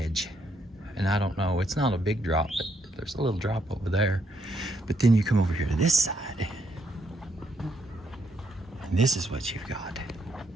And I don't know, it's not a big drop, but there's a little drop over there. But then you come over here to this side, and this is what you've got.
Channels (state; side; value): normal; both; correlation 0.75